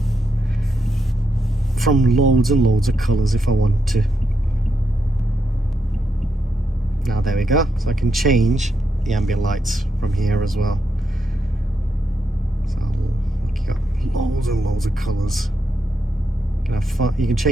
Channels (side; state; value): both; normal; correlation 0.82